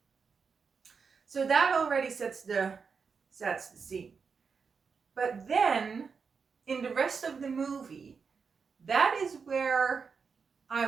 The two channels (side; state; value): left; quieter; 5.6 dB